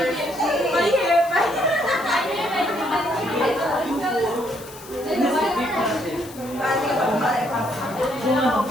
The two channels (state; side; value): noise; left; hiss, 18 dB below the sound